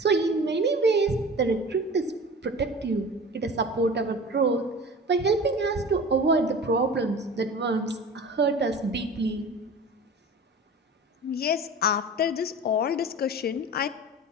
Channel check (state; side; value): normal; both; correlation 0.37